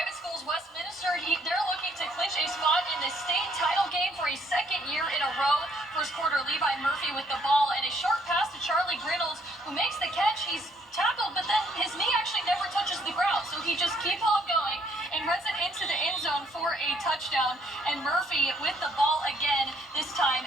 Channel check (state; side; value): normal; both; correlation 0.66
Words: schools, Westminster, they're looking to clinch a spot in the state title game for a second year in a row. First quarter, Levi Murphy with the ball, and a short pass to Charlie Grinnells, who makes the catch. He's tackled, but then his knee actually never touches the ground, so he just keeps on going and runs it into the end zone for a touchdown. And Murphy with the ball again, this